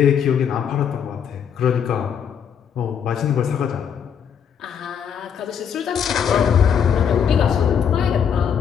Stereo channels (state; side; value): quieter; right; 7.8 dB